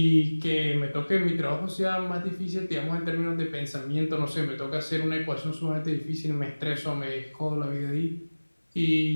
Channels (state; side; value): inverted; both; correlation -1.00